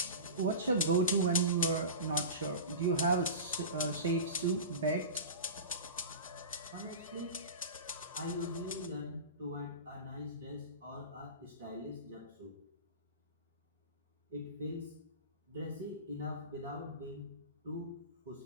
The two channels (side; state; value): both; inverted; correlation -0.30